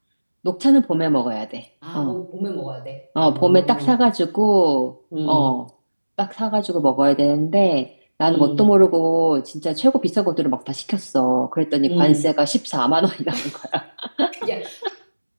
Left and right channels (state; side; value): inverted; both; correlation -1.00